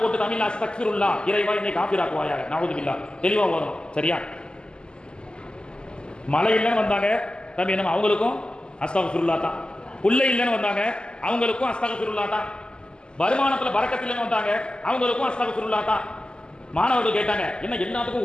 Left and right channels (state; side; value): late; right; 0.049 ms